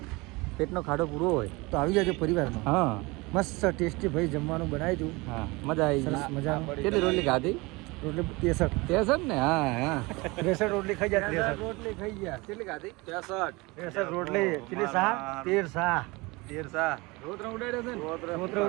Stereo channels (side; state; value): left; quieter; 24.3 dB